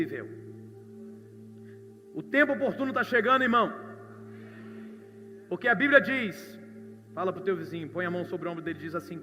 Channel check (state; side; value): identical; both; correlation 1.00